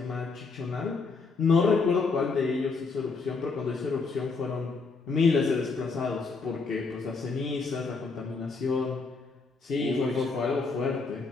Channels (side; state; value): right; quieter; 4.4 dB